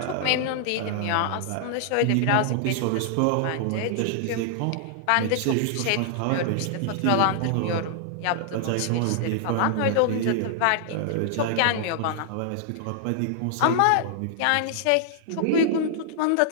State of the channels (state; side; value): different; both; correlation -0.01